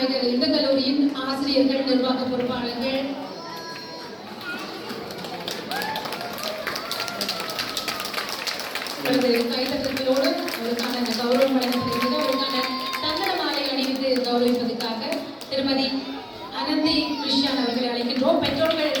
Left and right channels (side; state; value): both; identical; correlation 1.00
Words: இந்த கல்லூரியின் ஆசிரியர்கள், நிர்வாக பொறுப்பாளர்கள், கைத்தட்டங்களோடு அவருக்கான கௌரவம் வழங்கப்படுகிறது. அவருக்கான தங்கட மாலை அணிவித்து கௌரவிப்பதற்காக திருமதி அனந்தி கிருஷ்ணன் அவர்களை அழைக்கின்றோம்.